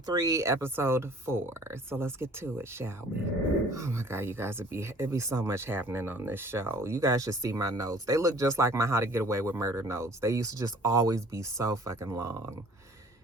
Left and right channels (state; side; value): normal; both; correlation 0.52